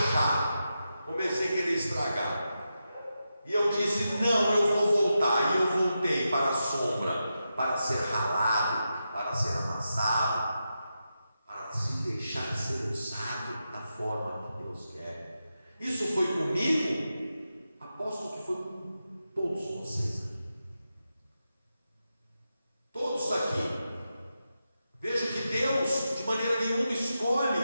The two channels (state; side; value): inverted; both; correlation -0.89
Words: comecei a querer estragar. E eu disse: não, eu vou voltar. E eu voltei para a sombra, para ser ralado, para ser amassado, para se deixar forma que Deus quer. Isso foi comigo, aposto que foi com todos vocês aqui. Todos aqui. Vejo que Deus, de maneira nenhuma, escolhe